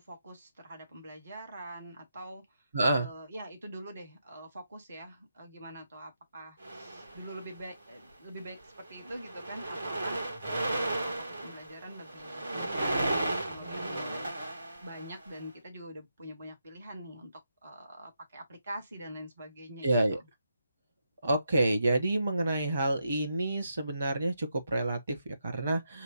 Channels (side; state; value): both; inverted; correlation -0.83